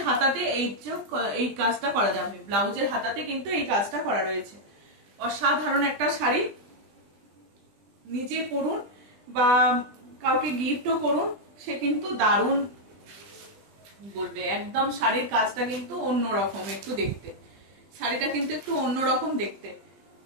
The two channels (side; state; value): left; late; 20 ms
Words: হাতাতে এই কাজটা করা যাবে, ব্লাউজের হাতাতে কিন্তু এই কাজটা করা রয়েছে। অসাধারণ একটা শাড়ি, নিজে পরুন বা কাউকে গিফটও করুন, সে কিন্তু দারুণ বলবে। একদম শাড়ির কাজটা কিন্তু অন্যরকম একটু দেখতে, শাড়িটা কিন্তু একটু অন্যরকম দেখতে।